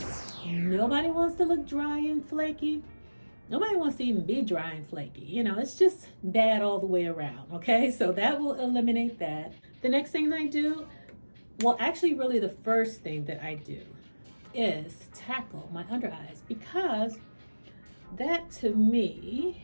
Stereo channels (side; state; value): both; inverted; correlation -1.00